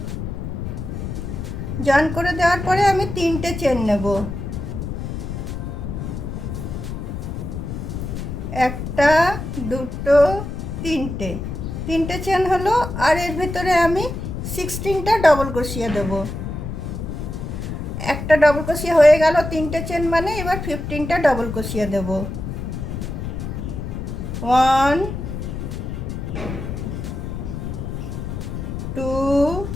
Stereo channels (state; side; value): noise; left; rumble, 5 dB below the sound